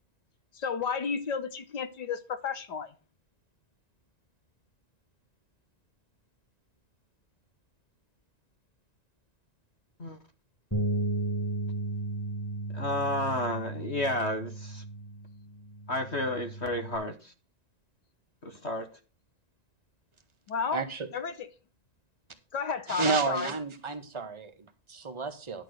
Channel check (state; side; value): late; right; 1.9 ms